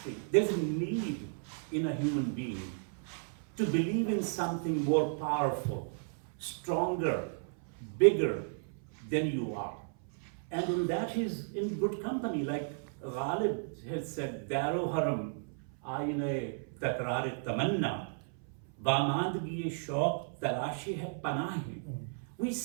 there's a need in a human being to believe in something more powerful, stronger, bigger than you are. And in that he's in good company, like Ghalib has said, Daro haram, aine takrar tamanna, bamandgi shauq tarashi hai panahi. We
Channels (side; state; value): left; silent; 55 dB below the other